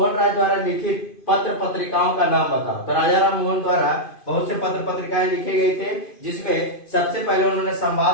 राय द्वारा लिखित पत्र पत्रिकाओं का नाम बताओ। तो राजा राम मोहन द्वारा बहुत से पत्र पत्रिकाएं लिखे गए थे, जिसमें सबसे पहले उन्होंने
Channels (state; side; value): late; right; 2.5 ms